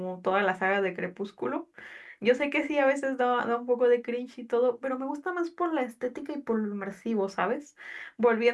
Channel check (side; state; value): both; identical; correlation 1.00